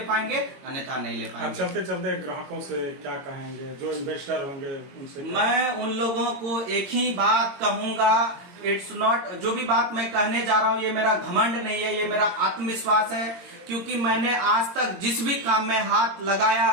पाएंगे, अन्यथा नहीं ले पाएंगे। चलते चलते ग्राहकों से क्या कहेंगे, जो इन्वेस्टर होंगे उनसे? मैं उन लोगों को एक ही बात कहूंगा, इट्स नॉट, जो भी बात मैं कहने जा रहा हूं ये मेरा घमंड नहीं है, ये मेरा आत्मविश्वास है। क्योंकि मैंने आज तक जिस भी काम में हाथ लगाया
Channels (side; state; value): left; late; 22 ms